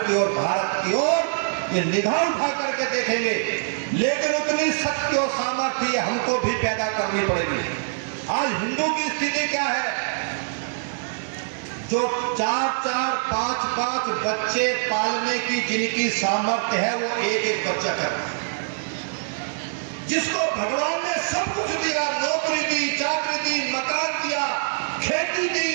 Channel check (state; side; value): silent; left; digital silence